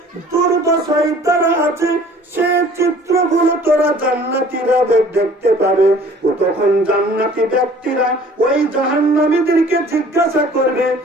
দুর্দশায় তারা আছে, সে চিত্রগুলো তোরা জান্নাতীরা দেখতে পাবে। ও তখন জান্নাতি ব্যক্তিরা ওই জাহান্নামীদেরকে জিজ্ঞাসা করবে,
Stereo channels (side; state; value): both; normal; correlation 0.51